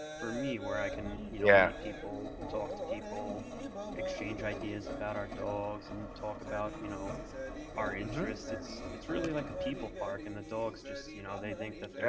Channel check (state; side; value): identical; both; correlation 1.00